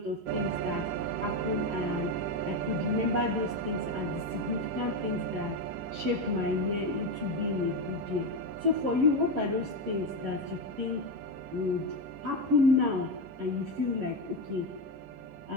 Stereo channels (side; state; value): left; late; 11 ms